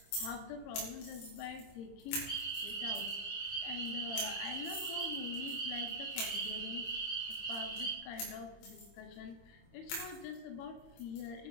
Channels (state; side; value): late; right; 22 ms